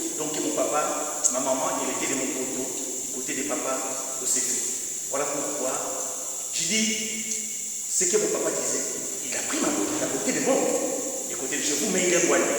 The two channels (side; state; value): both; identical; correlation 1.00